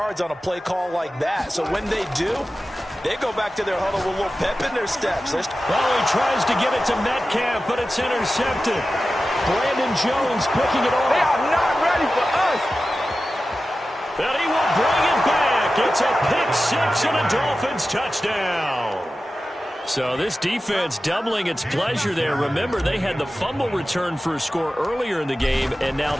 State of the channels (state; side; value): normal; both; correlation 0.94